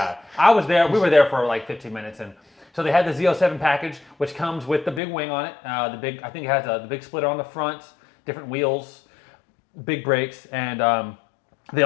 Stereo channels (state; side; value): drops out; right; at 5.0 s